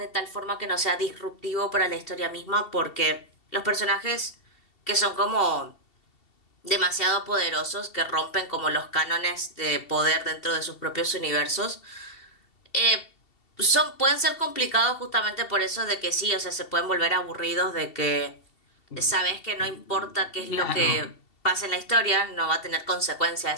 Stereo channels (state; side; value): late; right; 2.7 ms